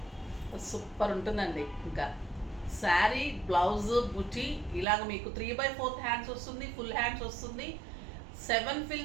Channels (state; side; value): drops out; left; at 4.9 s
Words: సూపర్ ఉంటుందండి. ఇంకా శారీ, బ్లౌజ్, బుటీ ఇలాగ మీకు 3/4 హ్యాండ్స్ వస్తుంది, ఫుల్ హ్యాండ్స్ వస్తుంది. 7